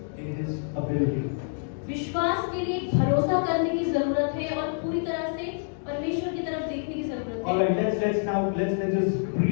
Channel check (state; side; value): silent; right; 60 dB below the other